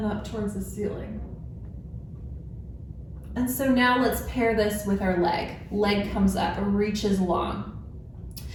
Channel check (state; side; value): identical; both; correlation 1.00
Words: up towards the ceiling. And so now let's pair this with our leg. Leg comes up, reaches long.